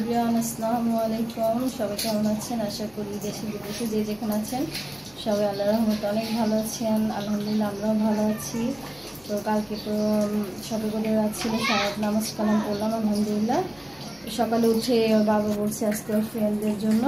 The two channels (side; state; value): left; noise; rumble, 29 dB below the sound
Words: আসসালামু আলাইকুম। সবাই কেমন আছেন? আশা করি দেশে বিদেশে যে যেখানে আছেন সবাই আল্লাহর রহমতে অনেক ভালো আছেন। আলহামদুলিল্লাহ আমরাও ভালো আছি। তো কালকে তো সবে করে ছিল, সারাত নামাজ কালাম পড়লাম আলহামদুলিল্লাহ। সকালে উঠে বাবা বলছে আজকে ফ্রেন্ডদের জন্য